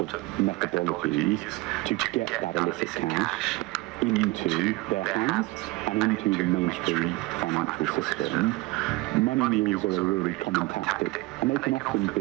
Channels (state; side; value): quieter; left; 21.5 dB